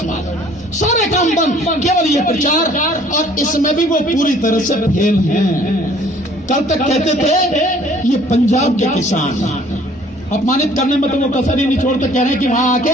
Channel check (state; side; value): normal; both; correlation 0.56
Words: में, सारे काम बंद, केवल ये प्रचार, और इसमें भी वो पूरी तरह से फेल हैं। कल तक कहते थे ये पंजाब के किसान, अपमानित करने में तो वो कसर ही नहीं छोड़ते, कह रहे हैं कि वहां